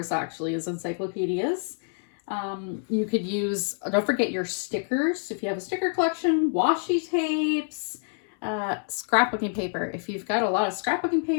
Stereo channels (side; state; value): right; silent; 59 dB below the other